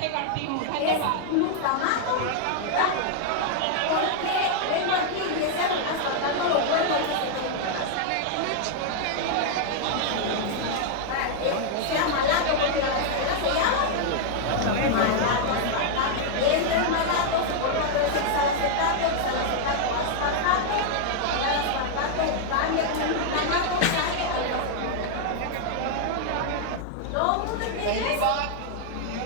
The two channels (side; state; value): both; different; correlation -0.01